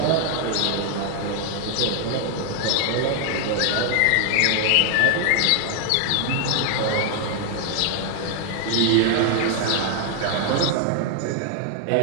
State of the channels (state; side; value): different; both; correlation 0.00